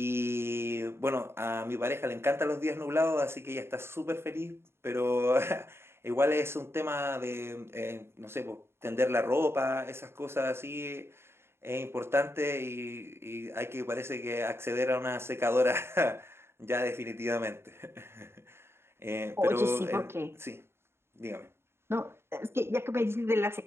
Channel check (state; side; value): late; left; 0.12 ms